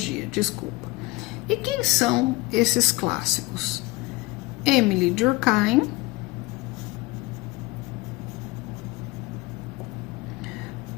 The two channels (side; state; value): right; quieter; 21.7 dB